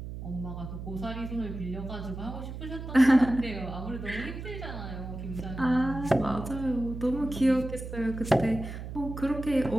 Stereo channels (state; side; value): noise; right; hum, 8 dB below the sound